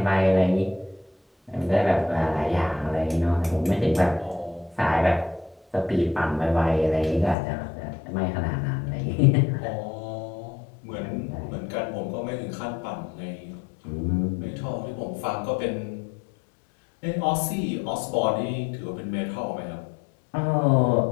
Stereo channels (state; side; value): drops out; right; at 7.4 s